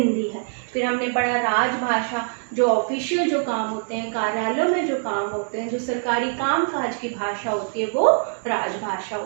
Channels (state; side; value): silent; left; digital silence